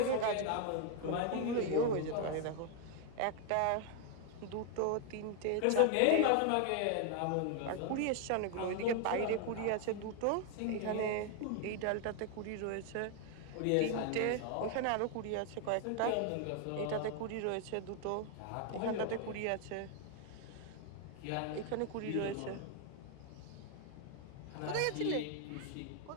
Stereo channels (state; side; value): different; both; correlation 0.01